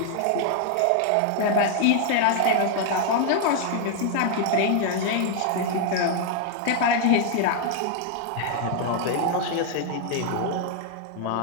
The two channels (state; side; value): different; both; correlation 0.00